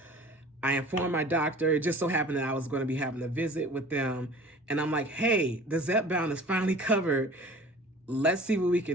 I informed my doctor. It just so happened that I was going to be having a visit with them. And I'm like, hey, the Zepbound is finally covered. Let's see what we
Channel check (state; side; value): normal; both; correlation 0.44